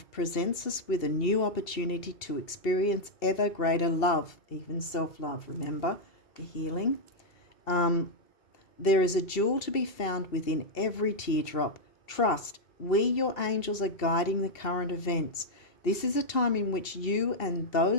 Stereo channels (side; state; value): right; late; 2.7 ms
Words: presents us with a new opportunity to experience ever greater love, even self-love, remember, the healing. There is a jewel to be found within every teardrop. Trust, we, your angels, are guiding the current events. This is a time in which you and